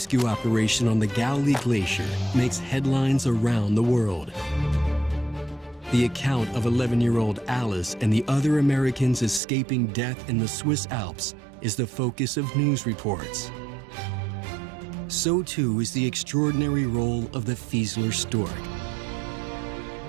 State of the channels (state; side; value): drops out; left; at 9.4 s